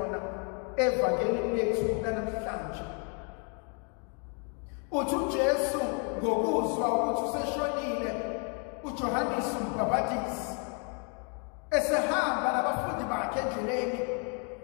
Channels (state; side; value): quieter; right; 39.0 dB